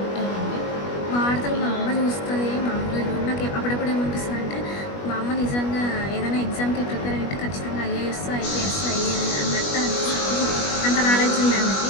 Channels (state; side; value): late; right; 21 ms